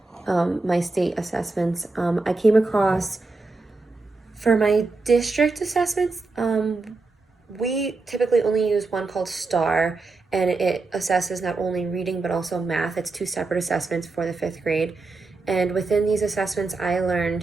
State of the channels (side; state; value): left; quieter; 3.7 dB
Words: my state assessments, I came across for my district assessments, we typically only use one called STAR, and it assesses not only reading but also math. It's two separate assessments for the fifth grade. And within these assessments, I